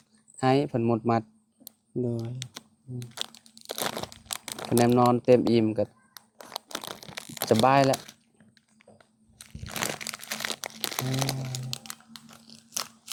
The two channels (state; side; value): identical; both; correlation 1.00